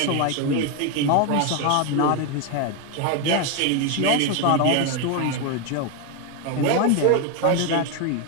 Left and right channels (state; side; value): different; both; correlation 0.02